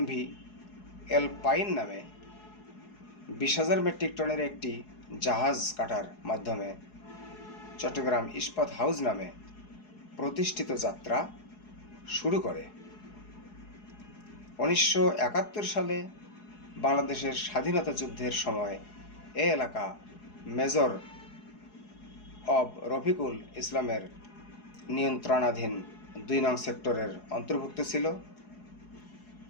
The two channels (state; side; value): late; right; 4.8 ms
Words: এলপাইন নামে 20,000 মেট্রিক টনের একটি জাহাজ কাটার মাধ্যমে চট্টগ্রাম ইস্পাত হাউস নামে প্রতিষ্ঠিত যাত্রা শুরু করে। 1971 সালে বাংলাদেশের স্বাধীনতা যুদ্ধের সময় এই এলাকা মেজর অব রফিকুল ইসলামের নিয়ন্ত্রণাধীন 2 নং সেক্টরের অন্তর্ভুক্ত ছিল।